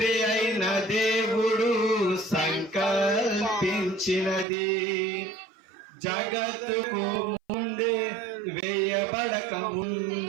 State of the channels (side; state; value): left; drops out; at 4.5 s